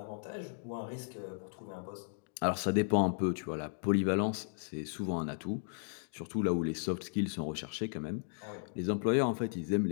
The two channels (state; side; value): silent; right; digital silence